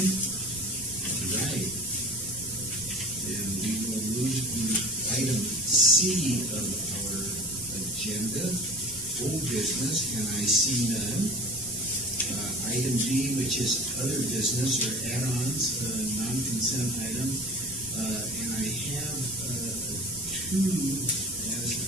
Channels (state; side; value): noise; right; rumble, 20 dB below the sound